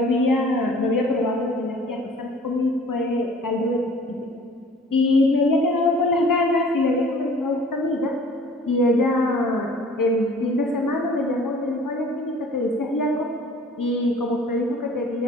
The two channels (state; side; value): normal; both; correlation 0.49